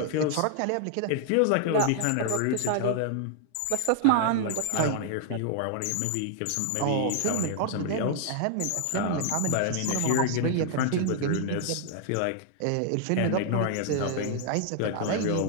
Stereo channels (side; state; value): both; different; correlation -0.01